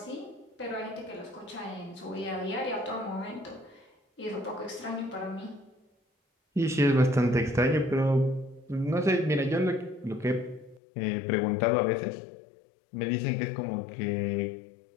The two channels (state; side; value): drops out; right; at 10.8 s